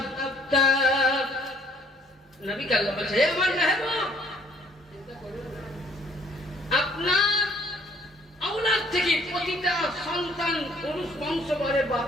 নবী আল্লাহ বলছে হে আমার মেহবুব, আপনার আওলাদ থেকে প্রতিটা সন্তান পুরুষ বংশ করে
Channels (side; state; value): both; normal; correlation 0.60